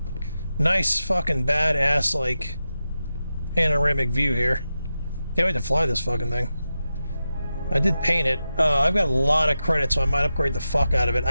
Nice fucking badass like panoramic view here. Can't wait to fly this fucking thing. I did paint it. I've got a lot of credits, so I might upgrade the fuck out of it.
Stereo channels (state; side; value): inverted; both; correlation -0.91